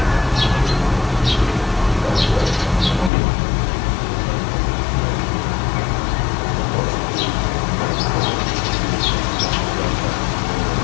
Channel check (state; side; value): drops out; right; at 3.1 s